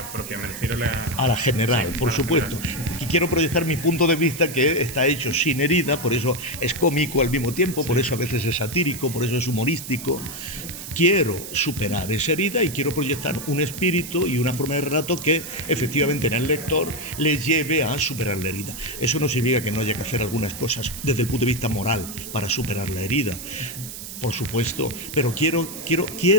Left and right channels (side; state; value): right; noise; hiss, 10 dB below the sound